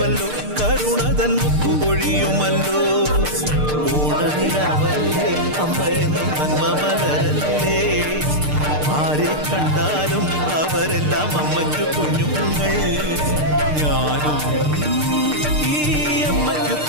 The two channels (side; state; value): left; late; 6.6 ms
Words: കരുണതൻ മുത്തുപൊഴിയുമല്ലോ. ഓണനിലാവല്ലേ അമ്മയെന്നും നന്മ മലരല്ലേ, ആരെ കണ്ടാലും അവരെല്ലാം അമ്മയ്ക്ക് കുഞ്ഞുങ്ങൾ. ഞാനും ഈ അമ്മയ്ക്ക്